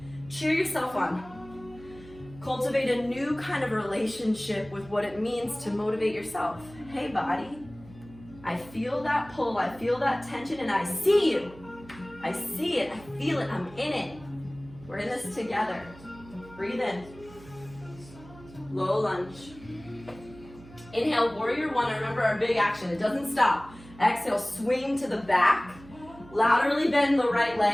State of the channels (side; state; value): right; noise; hum, 20 dB below the sound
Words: Cheer yourself on. Cultivate a new kind of relationship with what it means to motivate yourself. Hey body, I feel that pull, I feel that tension, and I see you. I see it, I feel it, I'm in it. We're in this together. Breathe in. Low lunge. Inhale, warrior one. Remember our big action, it doesn't stop. Exhale, swing to the back. Laterally bend the right